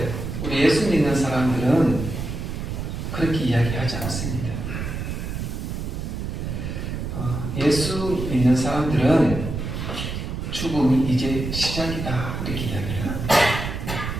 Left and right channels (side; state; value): right; noise; rumble, 4 dB below the sound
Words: 우리 예수 믿는 사람들은 그렇게 이야기하지 않습니다. 예수 믿는 사람들은 죽음이 이제 시작이다 이렇게 이야기를 합니다.